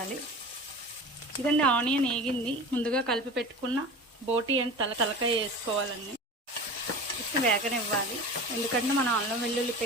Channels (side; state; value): both; normal; correlation 0.34